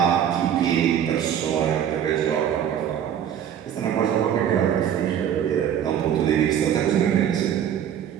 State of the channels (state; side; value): quieter; left; 9.5 dB